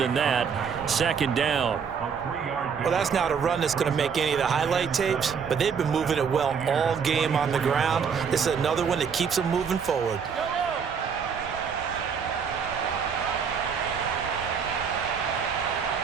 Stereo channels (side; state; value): left; quieter; 6.5 dB